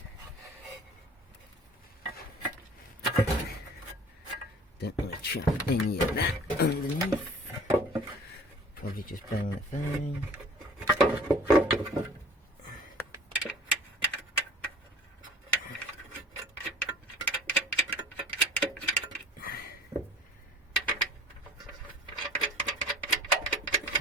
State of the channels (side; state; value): both; normal; correlation 0.47